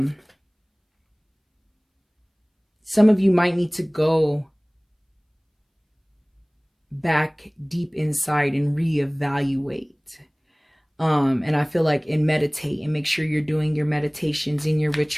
of you might need to go back deep inside and reevaluate. And I feel like, and meditate and make sure you're doing your meditations and your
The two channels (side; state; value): both; identical; correlation 1.00